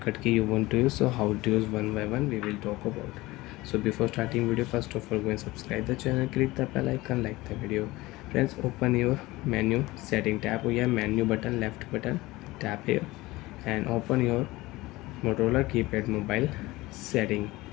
key you want to use. So how to use one by one we will talk about. So before starting video, first of all go and subscribe the channel, click the bell icon, like the video. Friends, open your menu setting, tap here menu button, left button, tap here and open your Motorola keypad mobile setting.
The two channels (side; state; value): right; quieter; 19.9 dB